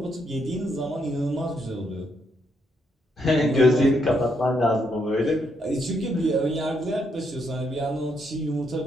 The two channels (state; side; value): normal; both; correlation 0.76